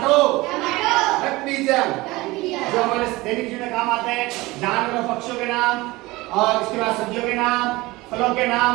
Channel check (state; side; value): quieter; left; 20.8 dB